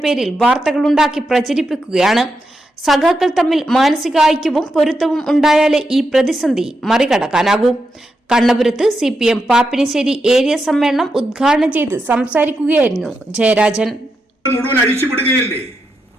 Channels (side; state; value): both; normal; correlation 0.85